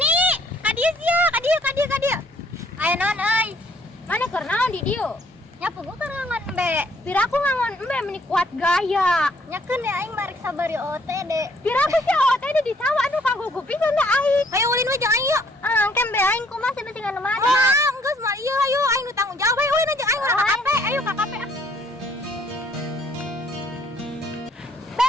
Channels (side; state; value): both; normal; correlation 0.64